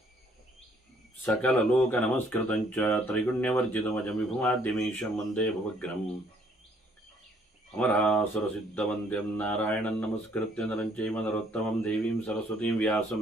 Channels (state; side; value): normal; both; correlation 0.64